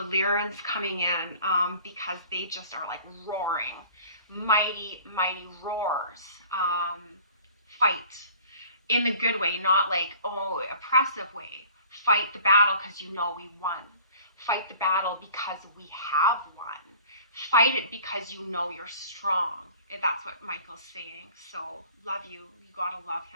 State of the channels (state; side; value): inverted; both; correlation -0.48